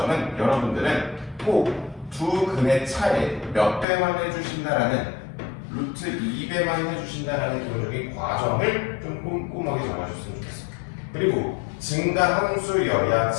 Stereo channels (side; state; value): right; drops out; at 3.9 s